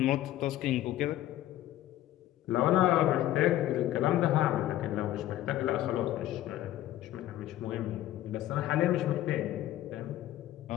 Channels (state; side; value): quieter; right; 13.7 dB